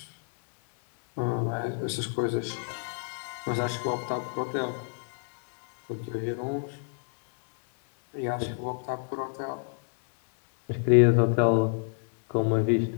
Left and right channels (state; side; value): silent; right; 59 dB below the other